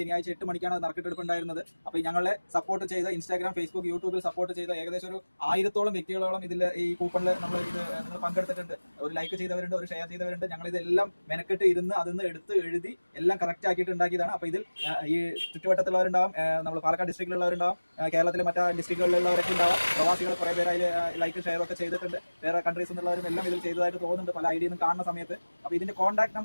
8 മണിക്കാണ് നറുക്കെടുപ്പ് ഉണ്ടായിരുന്നത്. അപ്പോൾ ഞങ്ങളെ സപ്പോർട്ട് ചെയ്ത ഇൻസ്റ്റാഗ്രാം, ഫേസ്ബുക്ക്, യൂട്യൂബിൽ സപ്പോർട്ട് ചെയ്ത ഏകദേശം ഒരു 1000-ഓളം വ്യക്തികളോളം ഇതിൽ ഈ കൂപ്പണിൽ നിങ്ങൾ പങ്കെടുത്തിട്ടുണ്ട്. ഒരു ലൈക്ക് ചെയ്തവരുണ്ട്, ഒരു ഷെയർ ചെയ്തവരുണ്ട്. ഞങ്ങൾ ഇതെല്ലാം മെനക്കെട്ട് ഇരുന്ന് അതിന്ന് എടുത്ത് എഴുതി എല്ലാം കറക്റ്റ് ആക്കിയിട്ട് ഉണ്ടാക്കിയതാണ്. അപ്പോൾ ഇതിൽ ഈ ചുറ്റുവട്ടത്തുള്ളവരുണ്ടാവും, നമ്മൾ പാലക്കാട് ഡിസ്ട്രിക്റ്റിലുള്ളവരുണ്ടാവും, കേരളത്തിലെ മറ്റു ഡിസ്ട്രിക്റ്റുകളിലുള്ളവരൊക്കെ ഉണ്ടാവും. പ്രവാസികൾ കുറേ പേര് അതിൽ ലൈക്ക് ഷെയർ ഒക്കെ ചെയ്തിട്ടുണ്ട്. വേറെ കൺട്രീസിൽ നിന്നുള്ളവരും എല്ലാം ഇതിൽ ചെയ്തതായിട്ട് തോന്നുന്നുണ്ട് പല ഐഡിയിൽ നിന്ന് കാണുന്ന സമയത്ത്. അപ്പോൾ ഇതിന്റെ കോൺടാക്ട്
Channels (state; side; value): inverted; both; correlation -1.00